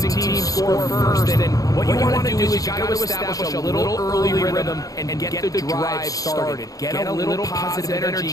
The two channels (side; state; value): right; late; 0.17 ms